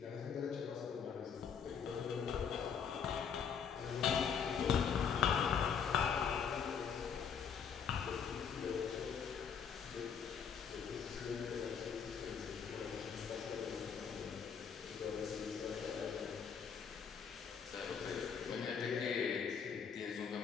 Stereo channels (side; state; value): right; quieter; 6.9 dB